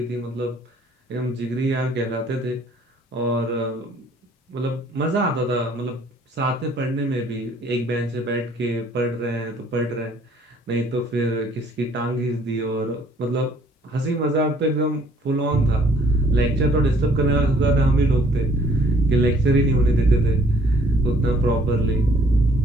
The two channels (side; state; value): both; normal; correlation 0.60